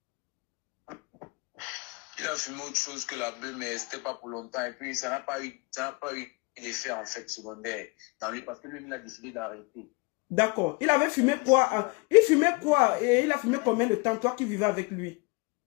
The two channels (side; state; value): right; quieter; 28.0 dB